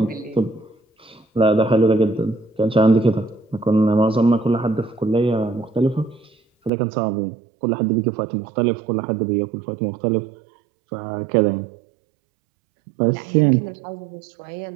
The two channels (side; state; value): left; drops out; at 6.7 s